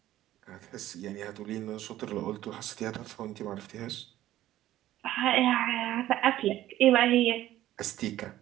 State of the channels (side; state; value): left; quieter; 13.9 dB